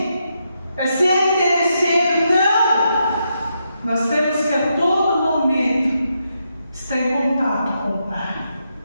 É ser interesseiro, não! Nós temos que a todo momento estar em contato com o Pai.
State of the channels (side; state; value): both; inverted; correlation -0.82